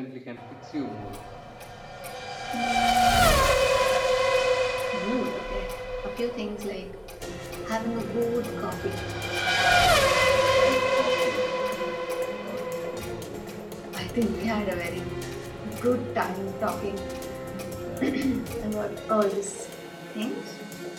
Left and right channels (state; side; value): identical; both; correlation 1.00